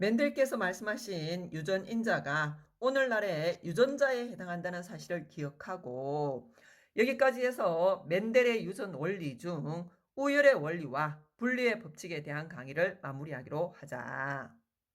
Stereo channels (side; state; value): both; identical; correlation 1.00